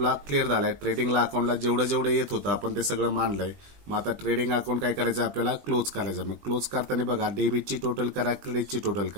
क्लिअर झालाय. ट्रेडिंगला अकाउंटला जेवढं येत होतं आपण ते सगळं मांडलंय. मग आता ट्रेडिंग अकाउंट काय करायचं आपल्याला, क्लोज करायचं. मग क्लोज करताना बघा डेबिटची टोटल करा, क्रेडिटची टोटल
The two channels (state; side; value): late; left; 20 ms